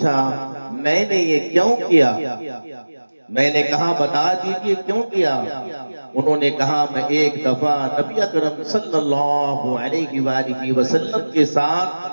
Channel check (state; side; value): inverted; both; correlation -1.00